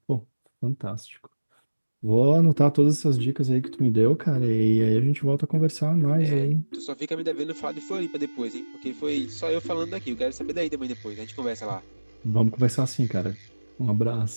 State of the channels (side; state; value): both; inverted; correlation -1.00